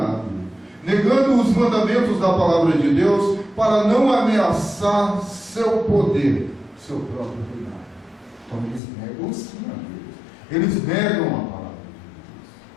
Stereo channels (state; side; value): drops out; right; at 8.8 s